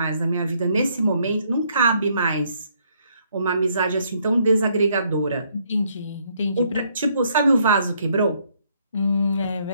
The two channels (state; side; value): inverted; both; correlation -0.69